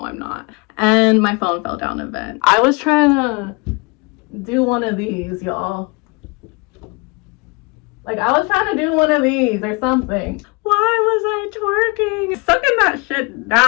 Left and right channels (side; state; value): right; quieter; 28.9 dB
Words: I'm not. And my phone fell down a vent. I was trying to do one of these, y'all. Like, I was trying to do one of these or something. Why was I twerking? Sucking that shit